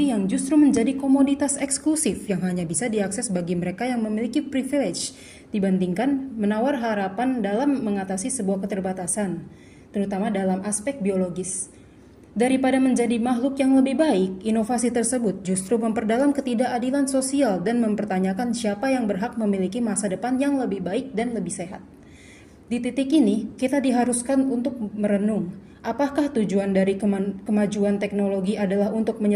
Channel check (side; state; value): both; identical; correlation 1.00